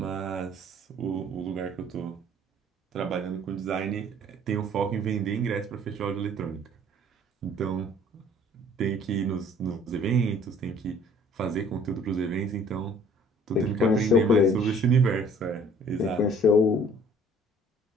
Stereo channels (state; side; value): normal; both; correlation 0.54